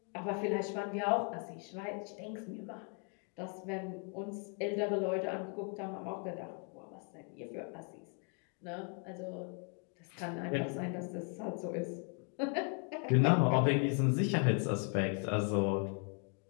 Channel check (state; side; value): quieter; right; 39.5 dB